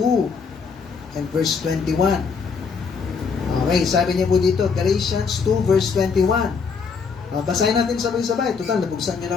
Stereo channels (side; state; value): right; quieter; 5.4 dB